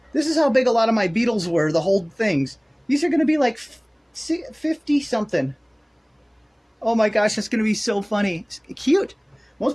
This is how big a lot of my beetles were, the whole things. These are going to be like 50 something. Oh my gosh, that's going to be so funny. It's cute. Most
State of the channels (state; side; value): identical; both; correlation 1.00